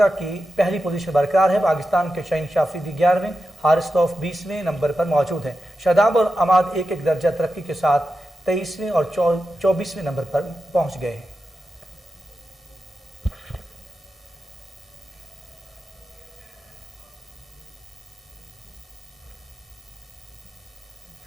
کی پہلی پوزیشن برقرار ہے. پاکستان کے شاہین شافریدی 11ویں, حارث توف 20ویں نمبر پر موجود ہیں. شاداب اور عماد 1-1 درجہ ترقی کے ساتھ 23ویں اور 24ویں نمبر پر پہنچ گئے ہیں.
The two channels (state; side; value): normal; both; correlation 0.90